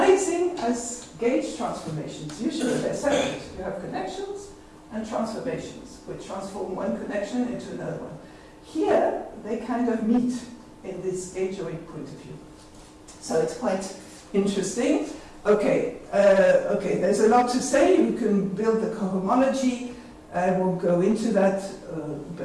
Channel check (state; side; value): identical; both; correlation 1.00